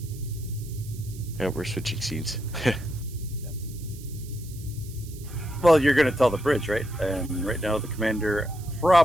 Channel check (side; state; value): right; noise; hiss, 19 dB below the sound